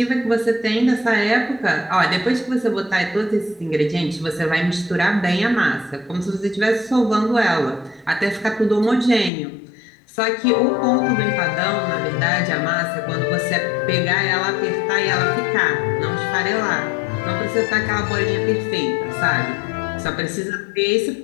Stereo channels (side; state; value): right; drops out; at 9.3 s